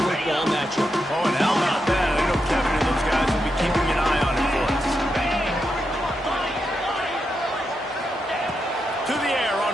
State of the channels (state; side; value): normal; both; correlation 0.85